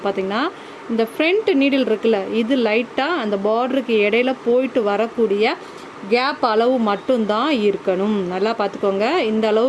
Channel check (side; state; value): both; identical; correlation 1.00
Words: பார்த்திங்கன்னா, இந்த ஃப்ரண்ட் நீடில் இருக்குல்ல, இது லைட்டாக அந்த பார்டருக்கு இடையில போயிட்டு வரக்கூடிய கேப் அளவு மட்டும்தான் இருக்கணும். நல்லா பார்த்துக்கோங்க, இந்த